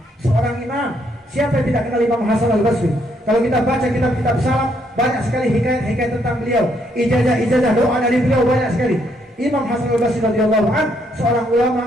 Seorang imam, siapa yang tidak kenal Imam Hasan Al-Basri? Kalau kita baca kitab-kitab salaf, banyak sekali hikayat tentang beliau. Ijazah doa dari beliau banyak sekali. Imam Hasan Al-Basri radhiyallahu anhu seorang ulama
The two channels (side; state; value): both; normal; correlation 0.72